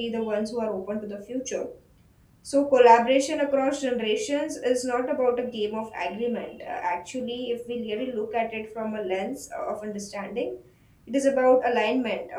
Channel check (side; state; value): both; identical; correlation 1.00